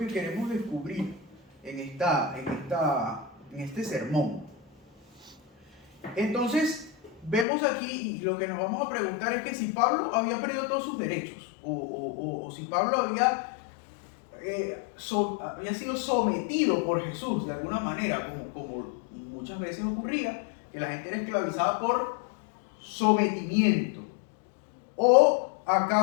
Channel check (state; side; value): drops out; right; at 7.5 s